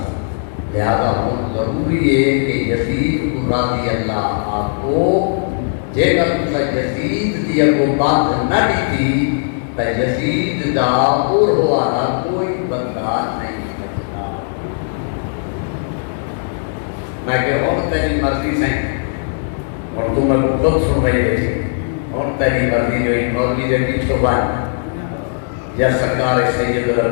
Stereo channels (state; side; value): silent; right; digital silence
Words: لہذا ہوں ضروری ہے کہ یزید راضی اللہ آپ کو جے کر تسا یزید دی اگو بات نہ ڈیتی تو یزید دا اور ہوا کوئی بدلا نہیں بچتا میں کہ اور تیری مرضی سے اور تم میں خود سن رہی بیٹھی اور تیری مرضی جو ایک مولوی دے پیچھو بان یا سرکار سید